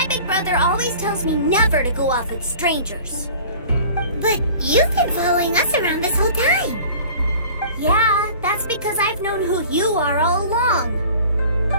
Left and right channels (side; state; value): both; inverted; correlation -0.44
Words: big brother always tells me never to go off with strangers. But you've been following us around this whole time. Yeah, that's because I've known who you are all along.